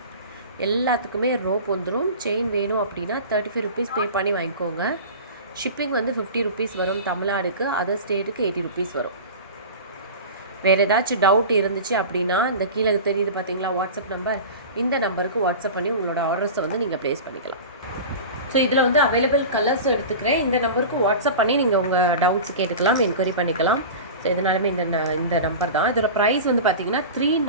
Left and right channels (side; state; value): both; inverted; correlation -0.32